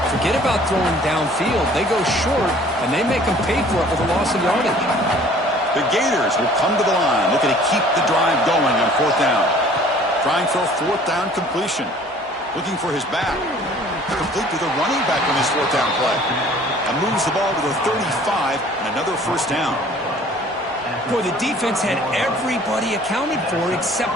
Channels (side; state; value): both; normal; correlation 0.52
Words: Forget about throwing downfield. They go short, and they make them pay for it with a loss of yardage. The Gators will come to the line, looking to keep the drive going on fourth down. Trying for a fourth down completion. Looking for his back. Complete to the running back on his fourth down play. And moves the ball to the 35 and another first down. Boy, the defense had everybody accounted for